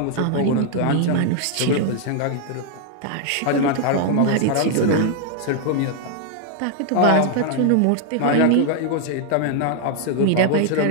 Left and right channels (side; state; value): both; different; correlation 0.00